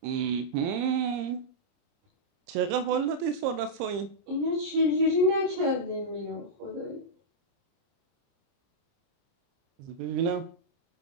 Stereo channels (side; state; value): left; late; 30 ms